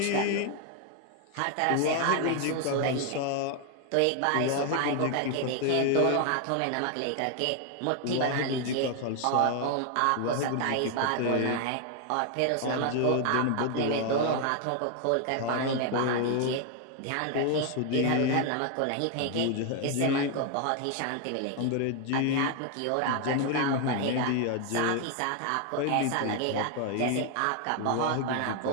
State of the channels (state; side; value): different; both; correlation 0.01